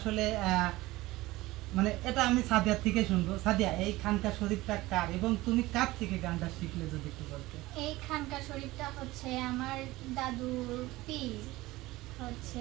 মানে এটা আমি সাদিয়ার থেকে শুনবো। সাদিয়া, এই খানকা শরীফটা কার এবং তুমি কার থেকে গানটা শিখলে যদি একটু বলতে। এই খানকা শরীফটা হচ্ছে আমার দাদুর পীর,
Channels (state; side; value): quieter; left; 18.9 dB